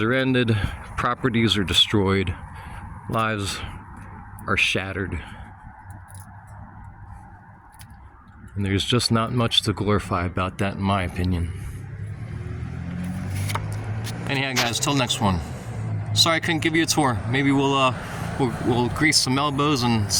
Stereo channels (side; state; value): both; identical; correlation 1.00